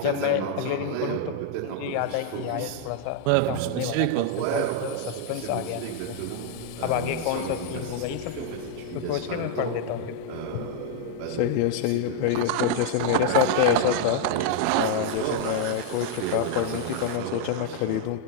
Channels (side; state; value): both; different; correlation 0.00